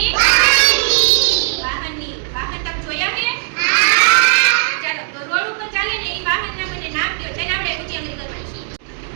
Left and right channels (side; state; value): left; silent; digital silence